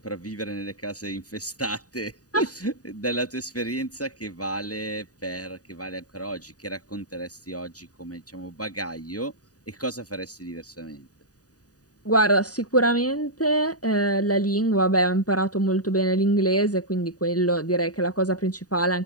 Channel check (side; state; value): right; late; 0.68 ms